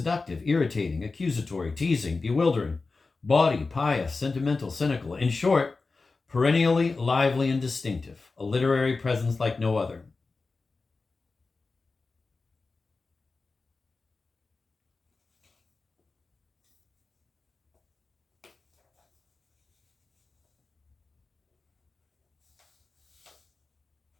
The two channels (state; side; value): quieter; right; 3.9 dB